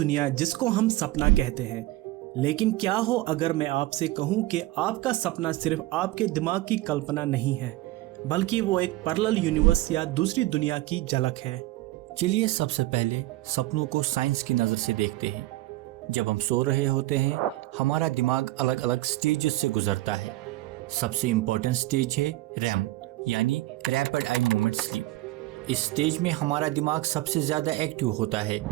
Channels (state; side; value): quieter; left; 17.9 dB